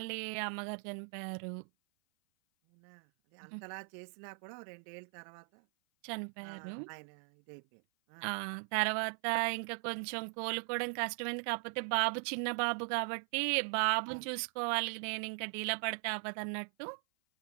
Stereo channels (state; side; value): silent; left; 52 dB below the other